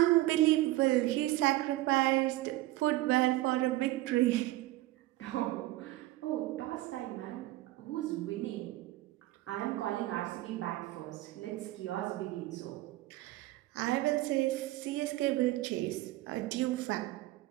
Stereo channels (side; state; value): left; quieter; 17.5 dB